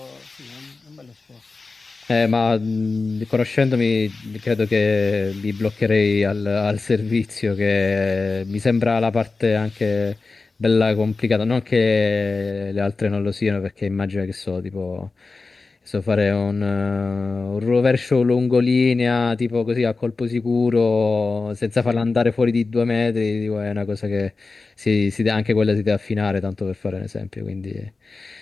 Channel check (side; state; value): right; quieter; 3.9 dB